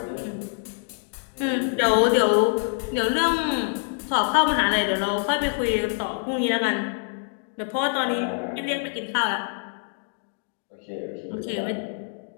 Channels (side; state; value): right; silent; digital silence